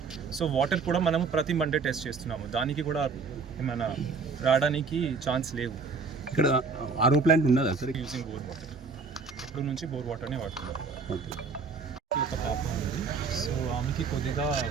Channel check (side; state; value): left; quieter; 4.8 dB